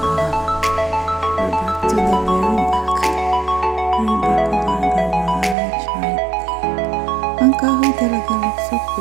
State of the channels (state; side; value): drops out; left; at 5.6 s